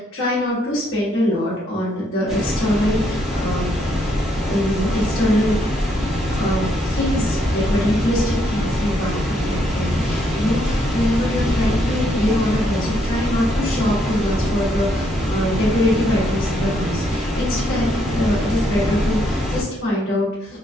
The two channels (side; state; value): both; normal; correlation 0.73